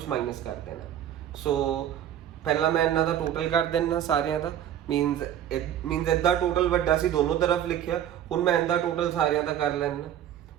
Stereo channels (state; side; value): quieter; left; 10.6 dB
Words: माइनस कर देना। सो पहला मैं इन्हां दा टोटल कर देना सारियां दा, मीनस इदा टोटल वड्डा सी, दोनों तरफ लिखिया, हुण मैं इदा टोटल सारियां दा कर लेना,